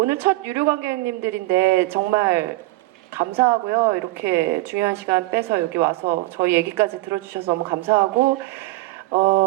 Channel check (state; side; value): quieter; left; 19.9 dB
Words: 첫 유료 관객님들인데 정말 감사하고요. 이렇게 중요한 시간 빼서 여기 와서 저희 얘기까지 들어주셔서 너무 감사하고